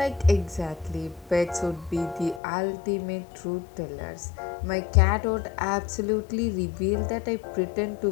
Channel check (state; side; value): drops out; right; at 2.4 s